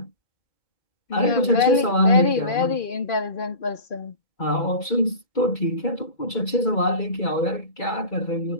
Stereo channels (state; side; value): late; right; 2.3 ms